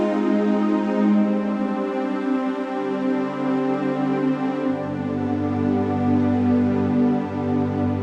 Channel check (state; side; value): identical; both; correlation 1.00